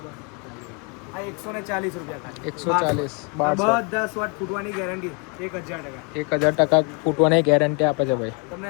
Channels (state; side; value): quieter; right; 34.5 dB